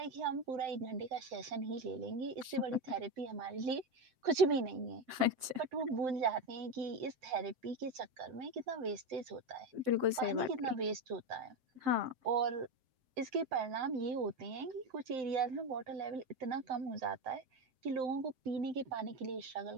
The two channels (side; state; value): left; late; 7.7 ms